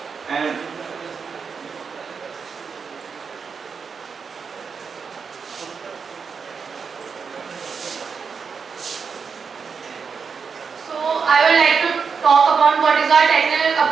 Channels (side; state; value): left; quieter; 5.8 dB